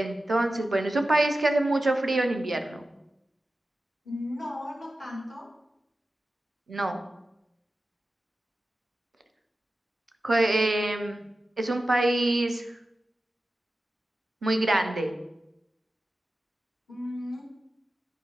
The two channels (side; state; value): both; normal; correlation 0.94